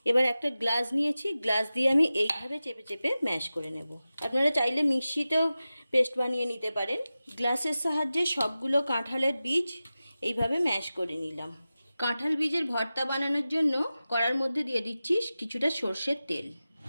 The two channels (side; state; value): both; inverted; correlation -0.95